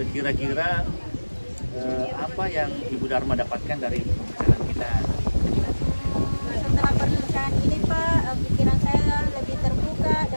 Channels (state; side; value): inverted; both; correlation -1.00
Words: kira-kira apa yang Ibu Dharma dapatkan dari pembicaraan kita? Setelah perbincangan ini Pak, pikiran saya lebih terbuka